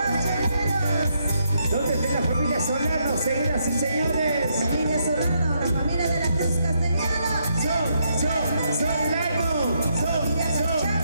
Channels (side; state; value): both; inverted; correlation -0.77